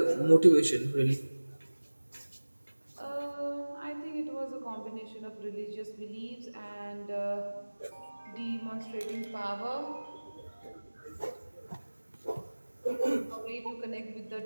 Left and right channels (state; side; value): inverted; both; correlation -1.00